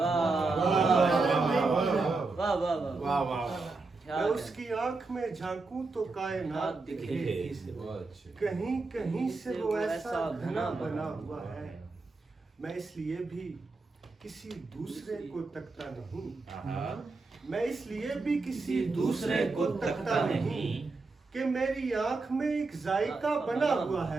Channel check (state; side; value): quieter; left; 3.7 dB